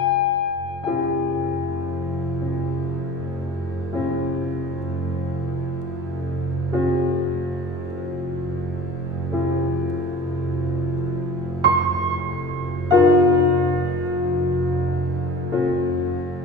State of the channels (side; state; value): both; normal; correlation 0.41